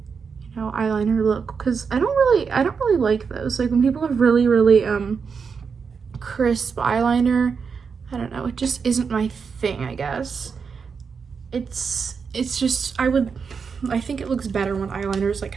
know, eyeliner look, because I don't really like those. Like when people have really, really crisp eyeliner, I don't know, it just isn't my thing, I guess. It's just, I think it looks better when eyeliner is like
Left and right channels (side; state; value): left; quieter; 5.8 dB